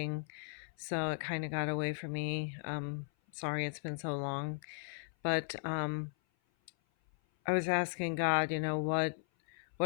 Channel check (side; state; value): right; silent; 53 dB below the other